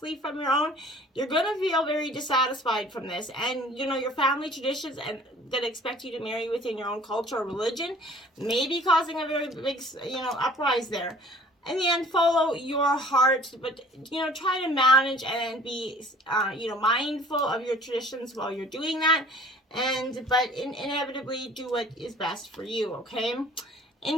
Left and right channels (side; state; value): both; normal; correlation 0.51